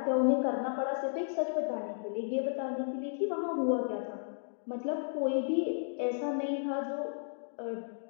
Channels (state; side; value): silent; right; digital silence